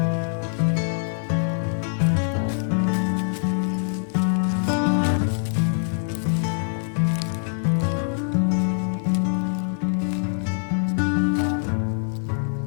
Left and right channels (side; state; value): right; silent; 55 dB below the other